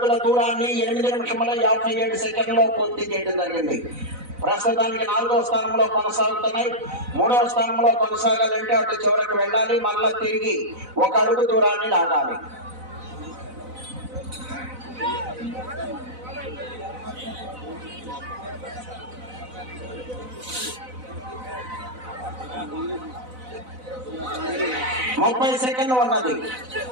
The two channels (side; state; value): left; late; 4.0 ms